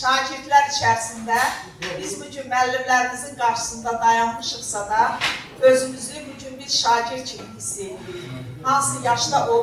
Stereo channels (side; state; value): both; identical; correlation 1.00